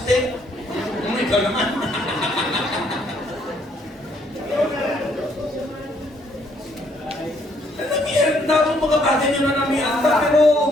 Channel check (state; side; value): normal; both; correlation 0.68